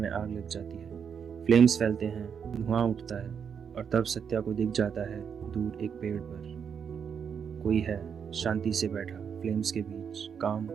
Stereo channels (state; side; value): quieter; left; 7.1 dB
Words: आग लग जाती है। फ्लेम्स फैलते हैं, धुआं उठता है, और तब सत्या को दिख जाता है दूर एक पेड़ पर कोई है, शांति से बैठा फ्लेम्स के बीच, काम,